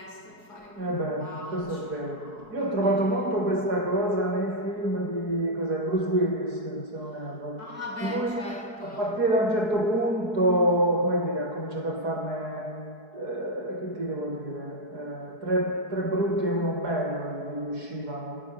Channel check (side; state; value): left; late; 4.7 ms